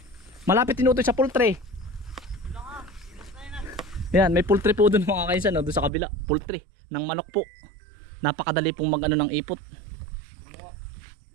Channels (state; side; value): drops out; left; at 5.9 s